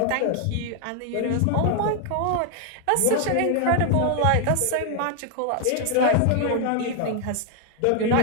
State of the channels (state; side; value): different; both; correlation 0.00